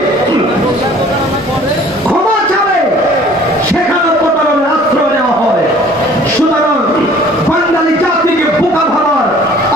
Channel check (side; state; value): both; normal; correlation 0.52